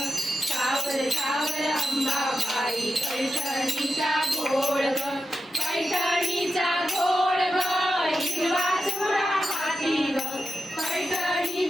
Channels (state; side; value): normal; both; correlation 0.90